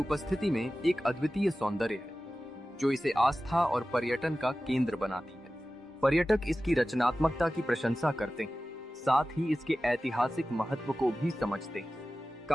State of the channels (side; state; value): both; normal; correlation 0.95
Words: में एक अद्वितीय सौंदर्य है, जो इसे आस्था और पर्यटन का केंद्र बनाती है। पर्यटक इसकी रचनात्मकता की प्रशंसा करते हैं, साथ ही इसके ऐतिहासिक महत्व को भी समझते हैं।